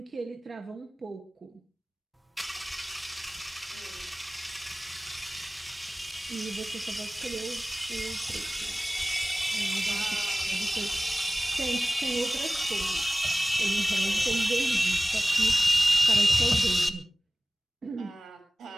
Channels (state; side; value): normal; both; correlation 0.98